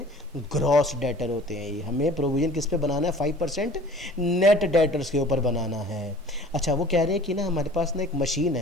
ग्रॉस डेटर होते हैं। ये हमें प्रोविजन किस पे बनाना है? 5% नेट डेटर्स के ऊपर बनाना है। अच्छा, वो कह रहे हैं कि ना हमारे पास ना एक मशीन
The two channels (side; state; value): both; normal; correlation 0.46